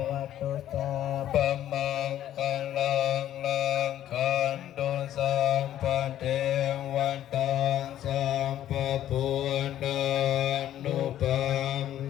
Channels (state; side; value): quieter; right; 12.0 dB